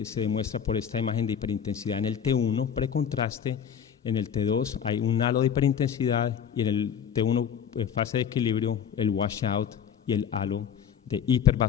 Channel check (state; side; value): quieter; right; 8.1 dB